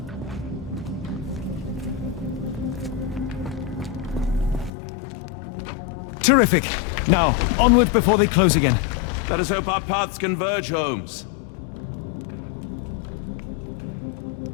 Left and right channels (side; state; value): right; drops out; at 4.7 s